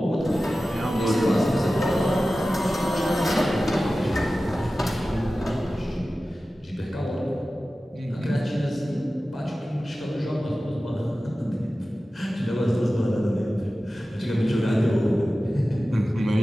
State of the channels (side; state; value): both; normal; correlation 0.95